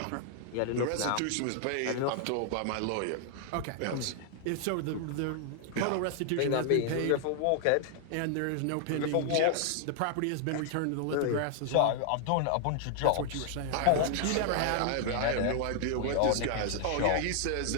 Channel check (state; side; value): different; both; correlation 0.00